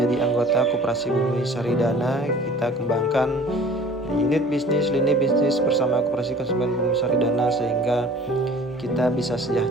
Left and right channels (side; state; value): both; normal; correlation 0.48